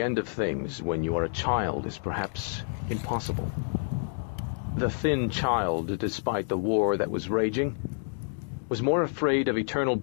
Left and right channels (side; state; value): right; silent; digital silence